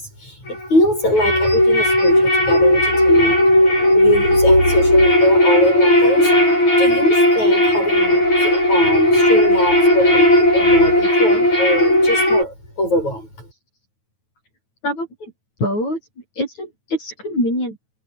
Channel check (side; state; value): right; late; 9.2 ms